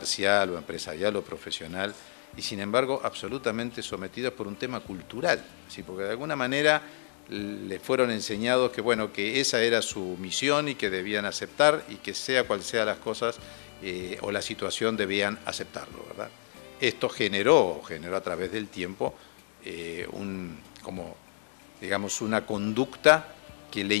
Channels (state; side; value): silent; right; digital silence